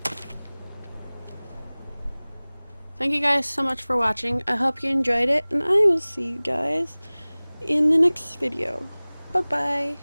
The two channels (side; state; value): both; inverted; correlation -1.00